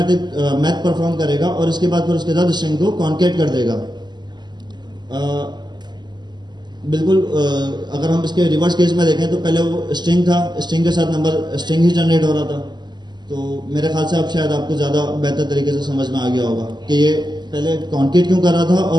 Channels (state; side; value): late; left; 0.21 ms